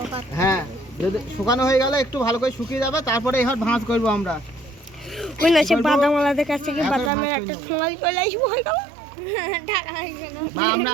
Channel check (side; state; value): left; drops out; at 7.1 s